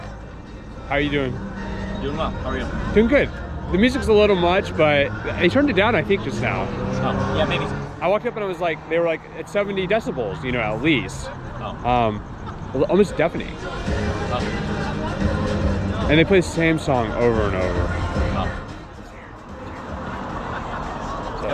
How are you doing? Doing well. How are you? Doing good. The music's a little much, but they turned it down, I think, just now. Oh, yeah, maybe. I walked up and I was like, they were like at 70 decibels, you know, at least. Oh. Almost deafening. Oh. And they play the same song over and over. Oh. So.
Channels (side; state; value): both; identical; correlation 1.00